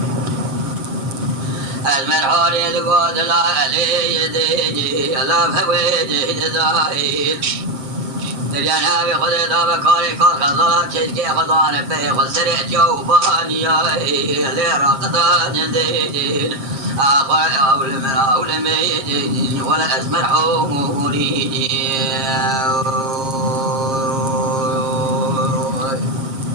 أزمر حوري دقود لا علي يديني لا بويدي دزايل الجناب خذ ذا بكاري كار خزالات شيكي خزان بي خسرت جوباني لرقدان زيدين أخوة أول من أول ميدين ولا أزمر حوري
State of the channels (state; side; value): late; left; 7.4 ms